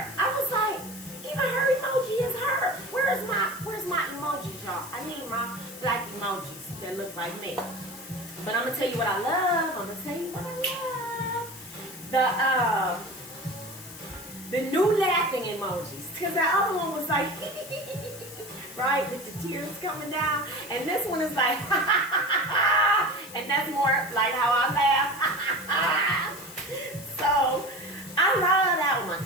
I was like, even her emoji is her. Where's my emojis, y'all? I need my black emojis that look like me. But I'm gonna tell you what I love. The new laughing emojis. Because the other one was like, right, with the tears coming down. And this one is like, and that's more like how I laugh. So, I love that one.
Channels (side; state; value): left; noise; hiss, 16 dB below the sound